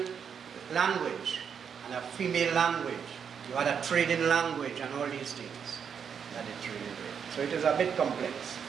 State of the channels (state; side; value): quieter; left; 7.2 dB